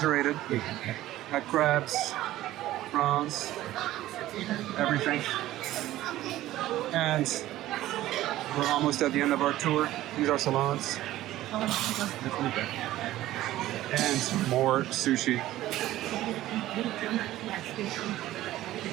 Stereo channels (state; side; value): quieter; left; 15.0 dB